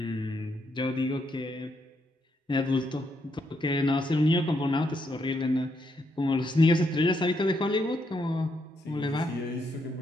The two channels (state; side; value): normal; both; correlation 0.78